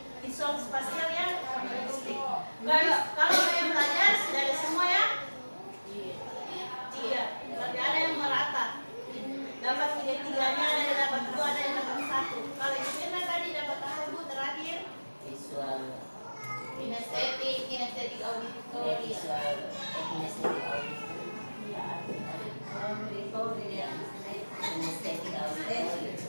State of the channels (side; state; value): both; inverted; correlation -1.00